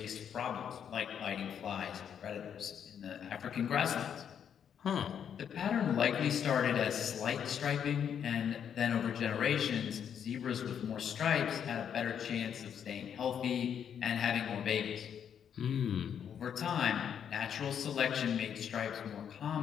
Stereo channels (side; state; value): right; quieter; 8.3 dB